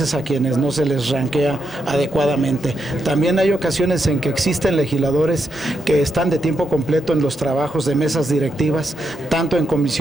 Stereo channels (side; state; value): both; normal; correlation 0.83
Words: a quienes no se les ranquea adecuadamente. También hay ocasiones en que existen legisladores que están de tiempo completo en los trabajos de mesas directivas, tanto en